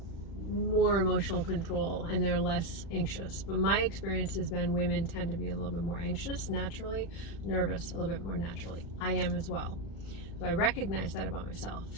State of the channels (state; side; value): late; right; 36 ms